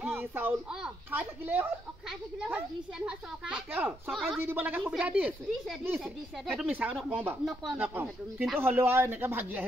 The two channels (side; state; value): both; normal; correlation 0.76